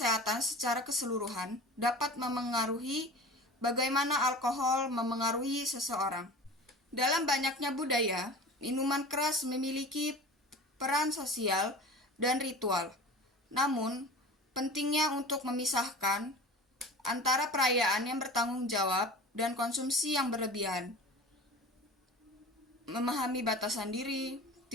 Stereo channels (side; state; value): both; normal; correlation 0.37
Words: secara keseluruhan dapat memengaruhi bagaimana alkohol memengaruhi seseorang. Dalam banyaknya budaya, minuman keras memiliki peran sosial dan ritual. Namun, pentingnya untuk memisahkan antara perayaan yang bertanggung jawab dan konsumsi yang berlebihan. Memahami batasan diri,